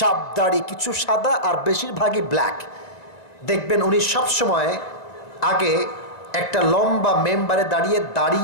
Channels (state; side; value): late; right; 2.0 ms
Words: দাড়ি, কিছু সাদা আর বেশিরভাগই ব্ল্যাক। দেখবেন উনি সবসময় আগে একটা লম্বা মেম্বারে দাঁড়িয়ে